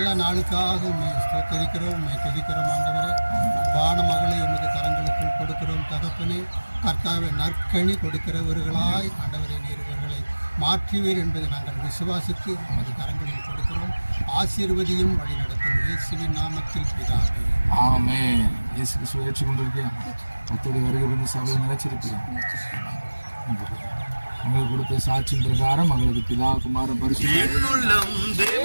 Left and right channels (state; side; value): inverted; both; correlation -1.00